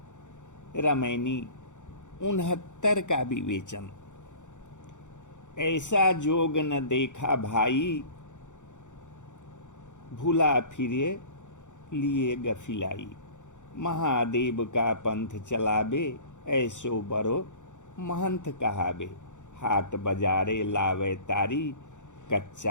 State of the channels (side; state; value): right; late; 0.85 ms